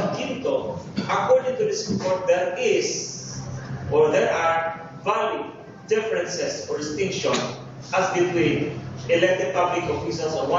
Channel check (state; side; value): identical; both; correlation 1.00